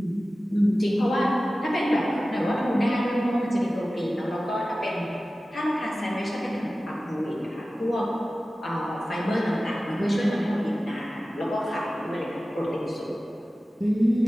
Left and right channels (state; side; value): normal; both; correlation 0.96